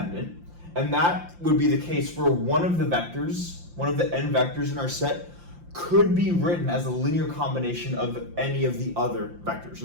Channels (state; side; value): late; left; 5.8 ms